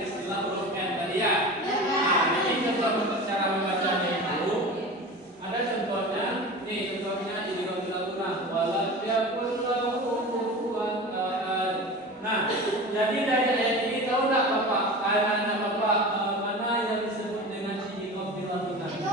istilah huruf N tadi ya. Nah, jadi contoh cara membacanya itu ada contohnya. Nih contohnya idgham bilahun walam yakul lahu kufuwan ahad. Nah, jadi dari ayat ini tahu enggak Bapak? Anak Bapak mana yang disebut dengan idgham bilahun?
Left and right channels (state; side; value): normal; both; correlation 0.33